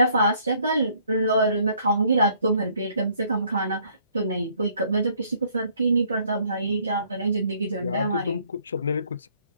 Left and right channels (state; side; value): inverted; both; correlation -0.63